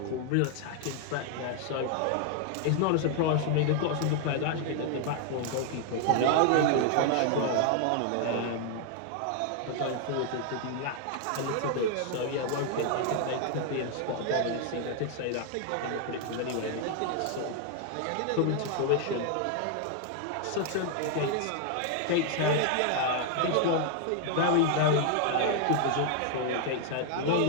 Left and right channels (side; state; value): both; different; correlation 0.00